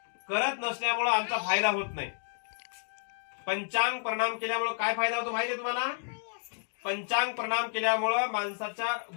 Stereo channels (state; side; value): silent; right; digital silence